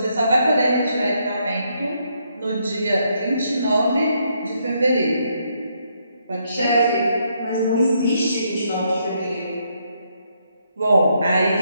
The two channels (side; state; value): both; inverted; correlation -0.75